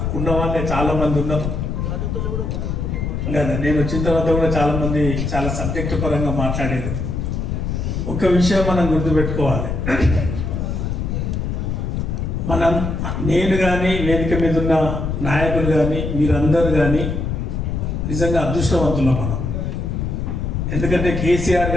ఉన్న వాళ్ళే చాలా మంది ఉన్నారు కదా. నేను వచ్చిన తర్వాత కూడా చాలా మంది చాలా సబ్జెక్టు పరంగా మాట్లాడేది. ఒక విషయం మనం గుర్తుపెట్టుకోవాలి, నేను కానీ వేదిక మీద ఉన్న నాయకులు కానీ మీరందరూ కానీ నిజంగా అదృష్టవంతులం మనం. ఎందుకంటే కేసీఆర్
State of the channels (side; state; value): left; noise; rumble, 2 dB below the sound